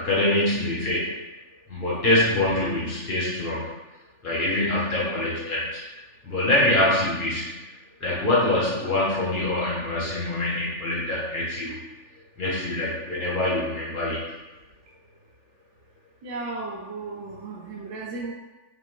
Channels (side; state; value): left; late; 3.4 ms